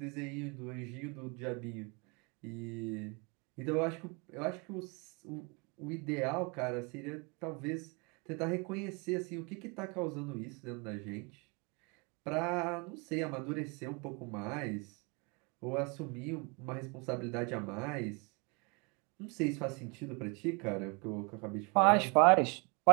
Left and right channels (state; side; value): quieter; left; 31.5 dB